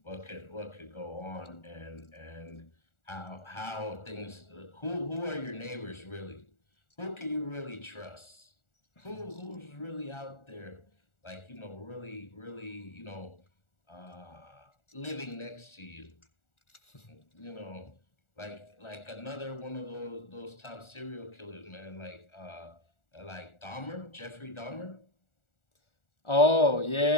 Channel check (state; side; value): late; right; 1.4 ms